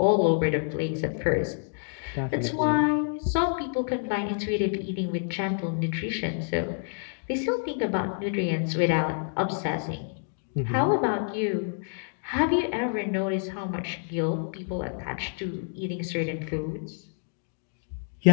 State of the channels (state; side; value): silent; right; 59 dB below the other